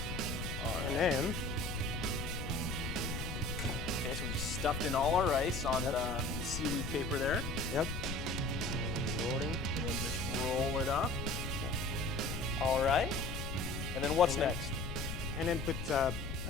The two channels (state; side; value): noise; left; rumble, 5 dB below the sound